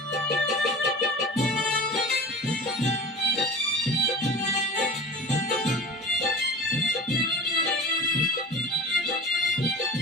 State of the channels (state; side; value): normal; both; correlation 0.36